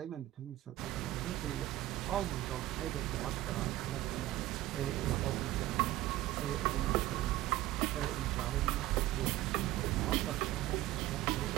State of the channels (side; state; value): left; quieter; 15.7 dB